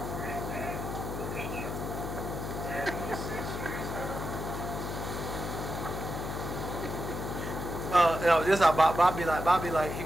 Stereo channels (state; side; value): noise; left; hum, 5 dB below the sound